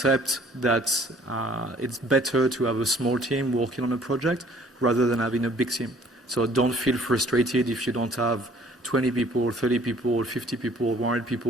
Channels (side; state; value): both; normal; correlation 0.56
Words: that it's better to have a small team working on a project rather than having a big team. So don't feel frustrated if you don't have 20 people, 30 people, 50 people, 100